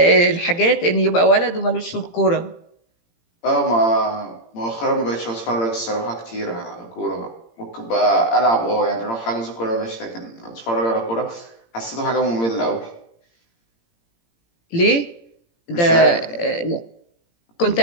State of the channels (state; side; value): late; right; 18 ms